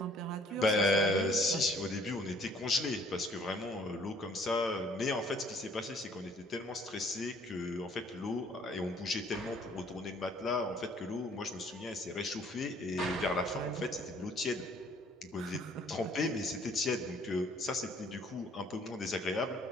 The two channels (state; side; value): normal; both; correlation 0.59